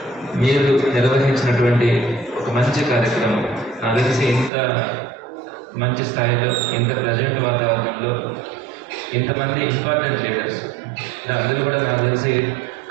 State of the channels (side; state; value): left; drops out; at 4.5 s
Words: మీరు నిర్వహించినటువంటి ఒక మంచి కార్యక్రమం నాకు తెలిసి ఇంత మంచి స్థాయిలో, ఇంత ప్రజెంట్ వాతావరణంలో ఇంతమంది ఇంపార్టెంట్ లీడర్స్, అందరూ కూడా నాకు తెలిసి